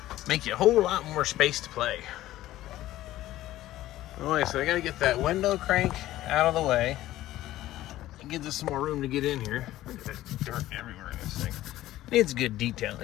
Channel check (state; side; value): quieter; right; 14.9 dB